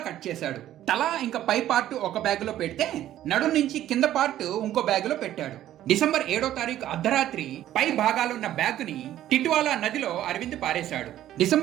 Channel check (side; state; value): left; quieter; 12.6 dB